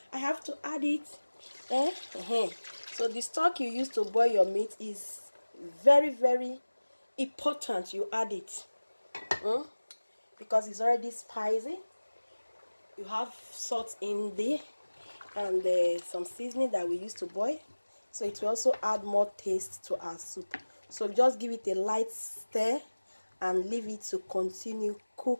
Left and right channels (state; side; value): inverted; both; correlation -1.00